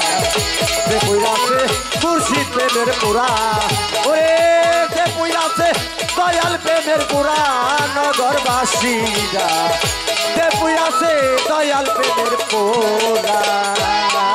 যে পুইরাছে মুর্শিদ প্রেমের পুরা ওরে যে পুইরাছে দয়াল প্রেমের পুরা নগরবাসীরা যে পুইরাছে দয়াল প্রেমের পুরা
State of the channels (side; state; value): both; identical; correlation 1.00